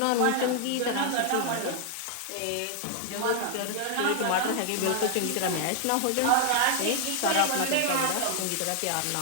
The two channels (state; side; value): different; both; correlation 0.00